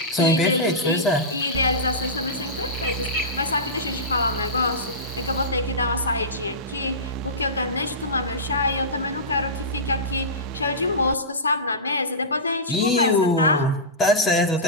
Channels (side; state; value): both; normal; correlation -0.18